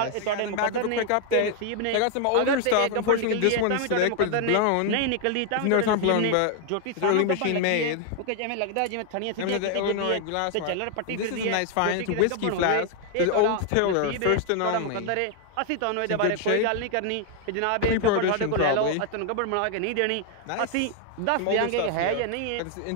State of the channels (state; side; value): different; both; correlation 0.00